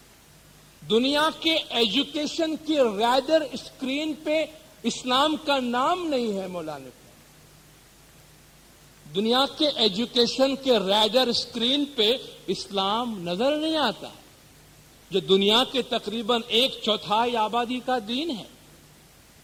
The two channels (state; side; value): identical; both; correlation 1.00